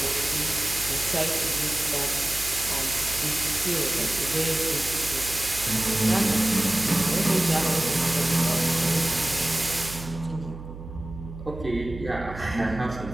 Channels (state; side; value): noise; right; hum, 12 dB below the sound